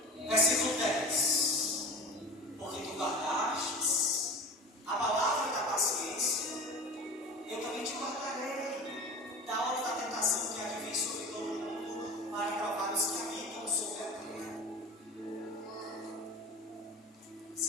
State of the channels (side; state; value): both; normal; correlation 0.34